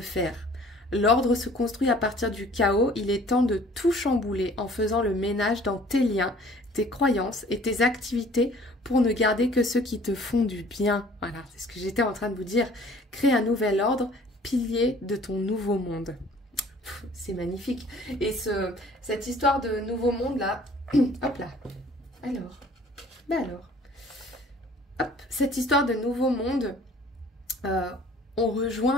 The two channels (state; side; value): normal; both; correlation 0.53